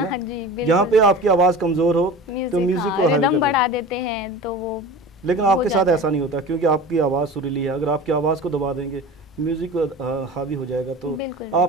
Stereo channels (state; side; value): normal; both; correlation 0.35